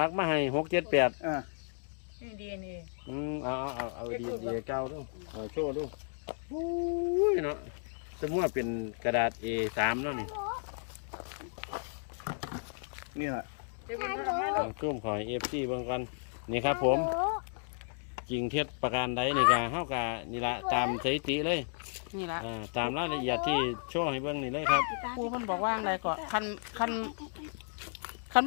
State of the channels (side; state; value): right; silent; digital silence